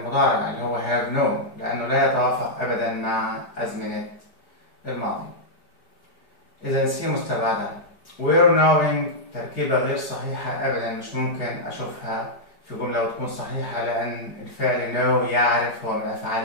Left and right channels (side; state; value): right; late; 4.7 ms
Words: اللي هو have known لأنه لا يتوافق أبدا مع أزمنة الماضي. إذا سي مستبعدة. we're knowing تركيبة غير صحيحة أبدا، مش ممكن أشوفها في جملة وتكون صحيحة لأن الفعل know يعرف هو من